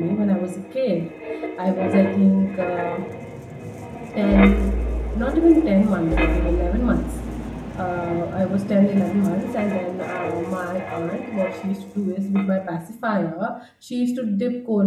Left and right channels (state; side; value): identical; both; correlation 1.00